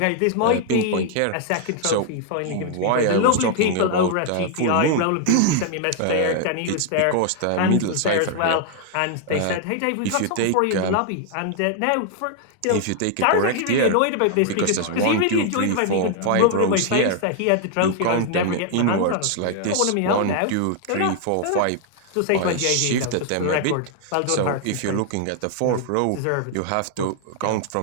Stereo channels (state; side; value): different; both; correlation 0.00